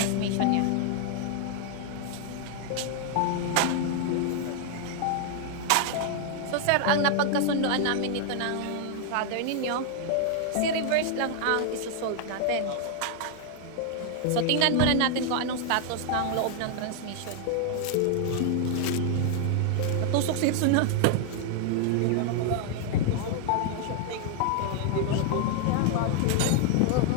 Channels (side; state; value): both; different; correlation 0.00